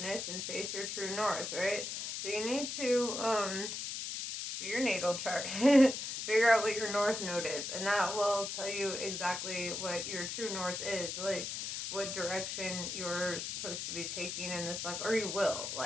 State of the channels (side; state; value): left; noise; hiss, 4 dB below the sound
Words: and face your true north, right? So you need to do your natal chart. Figure out what your north node is, and that will tell you exactly what your true north is, like what direction you're supposed to be taking in this life, or you will.